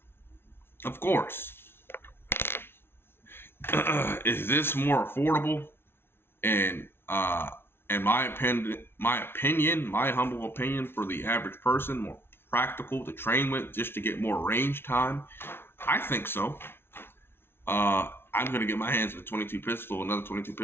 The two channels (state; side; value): late; right; 0.11 ms